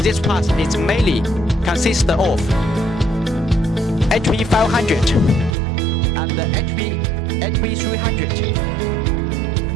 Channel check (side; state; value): left; drops out; at 5.6 s